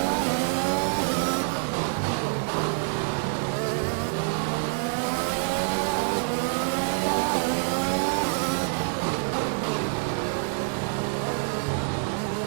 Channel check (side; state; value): left; silent; 57 dB below the other